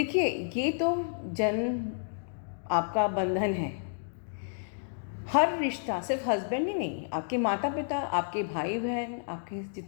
ये तो जन्म आपका बंधन है। हर रिश्ता, सिर्फ हस्बैंड ही नहीं, आपके माता पिता, आपके भाई बहन, आपके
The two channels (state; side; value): silent; right; digital silence